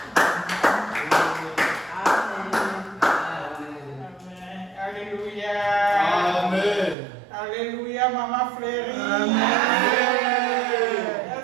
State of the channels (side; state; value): left; drops out; at 7.0 s